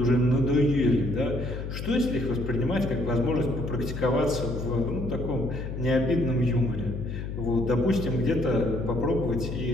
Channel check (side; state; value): left; noise; hum, 6 dB below the sound